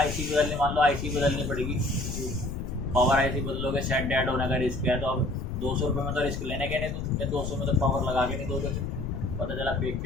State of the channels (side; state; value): left; noise; rumble, 5 dB below the sound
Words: बदलने, मान लो आईसी बदलनी पड़ेगी, पावर आईसी बदलोगे, सेट डेड होने का रिस्क है, तो अब 200 रुपये में तो रिस्क लेने के नहीं, तो 200 में तो पावर लगा के नहीं दोगे, पता चला